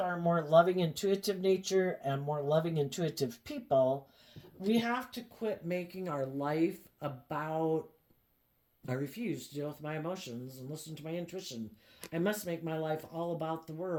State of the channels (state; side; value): identical; both; correlation 1.00